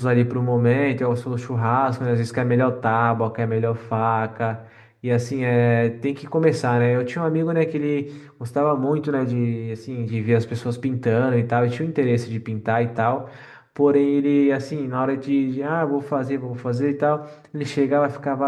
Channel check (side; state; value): both; identical; correlation 1.00